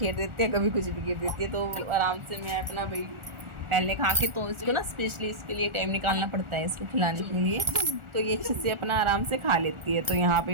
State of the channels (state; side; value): late; left; 1.4 ms